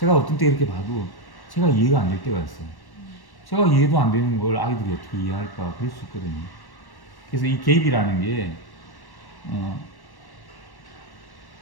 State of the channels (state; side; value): late; right; 1.1 ms